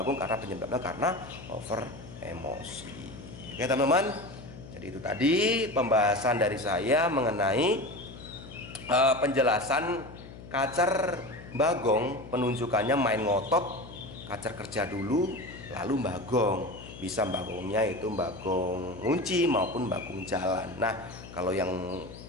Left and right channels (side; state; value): left; noise; hum, 15 dB below the sound